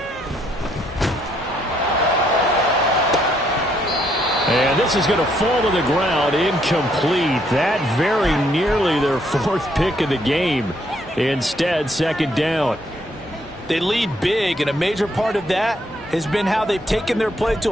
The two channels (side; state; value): both; normal; correlation 0.71